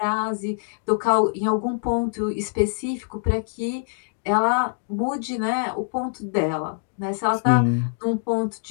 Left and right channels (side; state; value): right; silent; digital silence